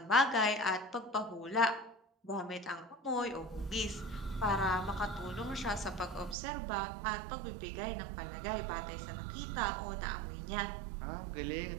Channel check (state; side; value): drops out; left; at 6.4 s